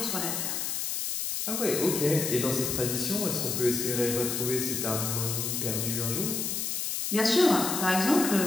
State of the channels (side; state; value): left; noise; hiss, 1 dB below the sound